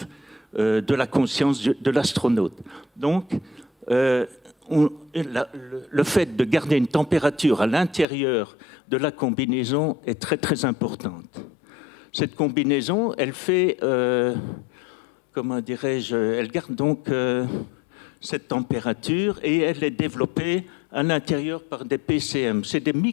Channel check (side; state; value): right; drops out; at 8.1 s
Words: de la conscience de l'astronaute. Donc, le fait de garder une température à l'intérieur de la combinaison est très très importante. Cette combinaison, elle fait, comment dirais-je, elle garde donc cette température et elle est développée à l'intérieur par des PCM. C'est des